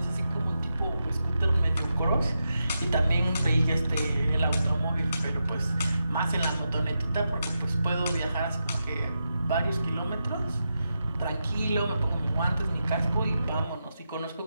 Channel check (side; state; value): both; inverted; correlation -0.87